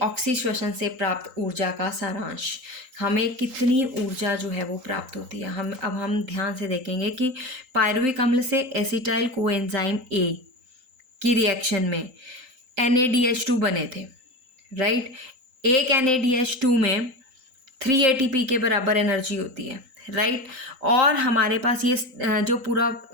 ऑक्सीश्वसन से प्राप्त ऊर्जा का सारांश, हमें कितनी ऊर्जा जो है वो प्राप्त होती है। हम ध्यान से देखेंगे कि पायरुविक अम्ल से एसिटाइल कोएंजाइम ए की रिएक्शन में NADH2 बने थे, राइट। एक NADH2 में 3 ATP के बराबर एनर्जी होती है, राइट। और हमारे पास ये जो पूरा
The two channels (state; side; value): late; left; 3.8 ms